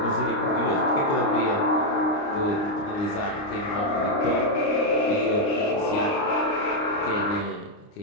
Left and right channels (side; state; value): right; late; 29 ms